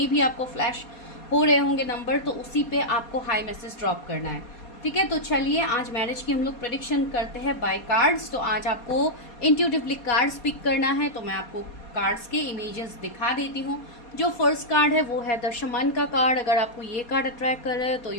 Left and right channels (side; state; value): right; late; 4.2 ms